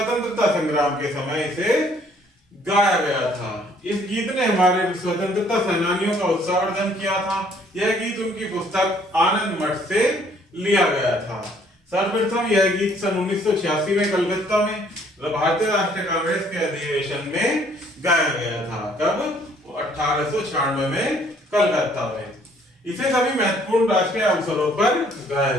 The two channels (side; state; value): both; normal; correlation 0.62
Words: संग्राम के समय इसे गाया गया था। इस गीत ने हमारे स्वतंत्रता सेनानियों का उत्साहवर्धन किया था। यह गीत उनकी पुस्तक आनंद मठ से लिया गया था। सर्वप्रथम यह गीत सन 1986 में कलकत्ता में भारतीय राष्ट्रीय कांग्रेस के अधिवेशन में गाया गया था। कब? 1896 में कलकत्ता में। इसे सभी महत्वपूर्ण राष्ट्रीय अवसरों पर गाया